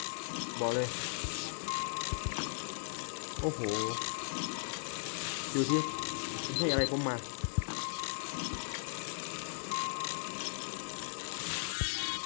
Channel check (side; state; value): right; silent; digital silence